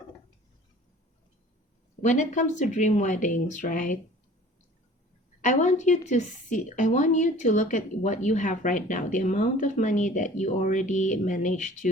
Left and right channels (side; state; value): both; normal; correlation 0.47